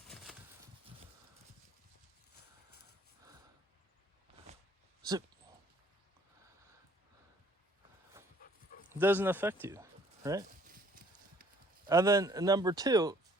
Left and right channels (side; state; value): both; normal; correlation 0.58